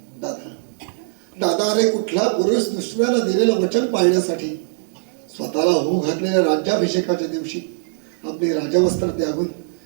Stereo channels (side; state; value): left; silent; 65 dB below the other